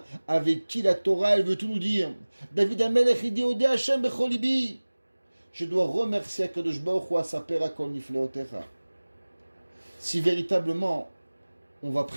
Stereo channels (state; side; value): inverted; both; correlation -1.00